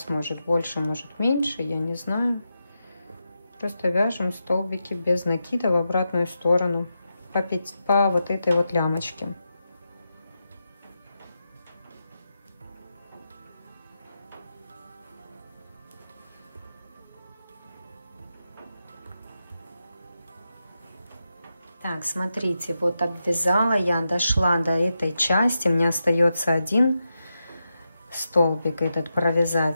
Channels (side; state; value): both; inverted; correlation -0.88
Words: может больше, может меньше, я не знаю. Просто вяжем столбики без накида в обратную сторону по вот этой вот лямочке. Так, смотрите, вот обвязала я, дошла до этой части, мне остается один столбик этот